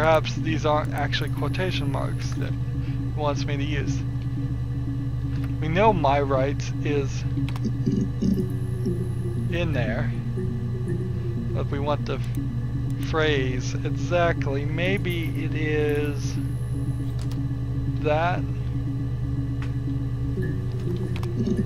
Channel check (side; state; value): both; identical; correlation 1.00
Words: these aren't actually quotation marks that it wants me to use. We know my rights is in there, but we want the phrase exactly. Maybe it is that.